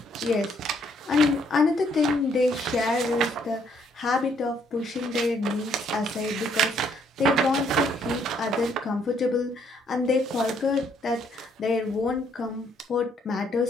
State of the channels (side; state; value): both; normal; correlation 0.68